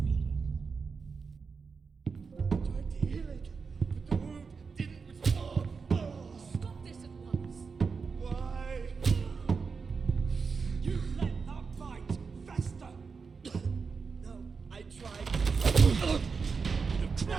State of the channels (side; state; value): left; quieter; 5.1 dB